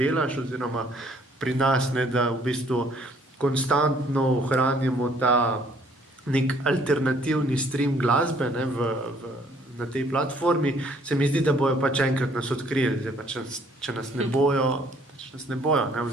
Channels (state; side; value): normal; both; correlation 0.61